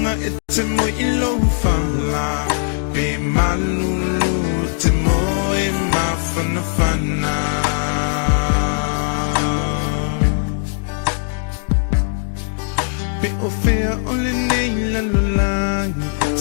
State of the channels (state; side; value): silent; right; digital silence